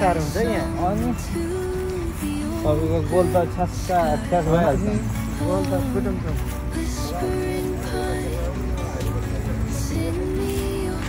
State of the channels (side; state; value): both; identical; correlation 1.00